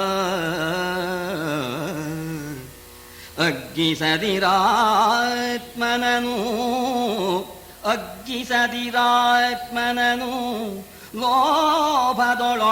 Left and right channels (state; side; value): identical; both; correlation 1.00